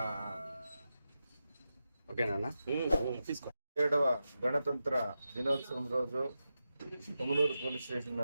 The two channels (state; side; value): inverted; both; correlation -0.90